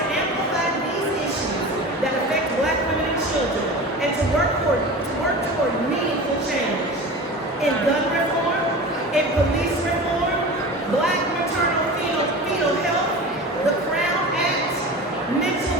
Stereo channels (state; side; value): normal; both; correlation 0.33